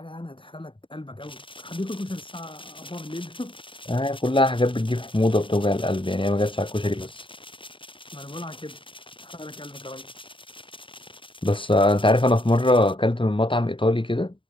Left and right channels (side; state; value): right; late; 0.25 ms